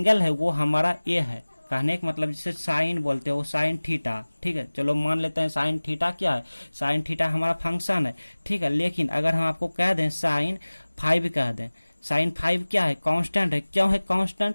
है वो हमारा ए है। कहने का मतलब जिसे साइन बोलते हो, साइन थीटा। ठीक है, चलो मान लेते हैं साइन थीटा क्या है, साइन थीटा हमारा फंक्शन है। ठीक है, लेकिन अगर हम आपको कह दें साइन 5 कह दें, साइन 5 क्या है, कांस्टेंट है। क्यों है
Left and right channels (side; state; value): both; inverted; correlation -1.00